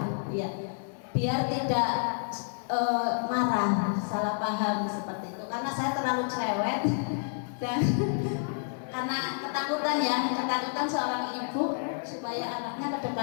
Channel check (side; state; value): right; silent; digital silence